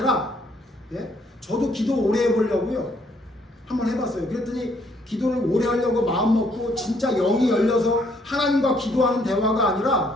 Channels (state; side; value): normal; both; correlation 0.67